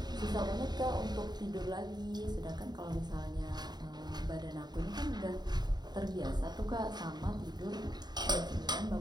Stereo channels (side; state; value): left; late; 0.20 ms